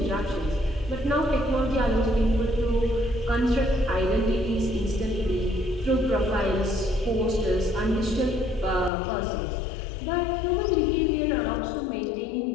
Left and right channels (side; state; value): right; drops out; at 8.9 s